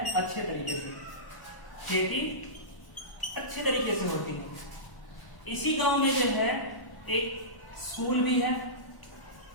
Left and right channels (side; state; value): right; late; 1.1 ms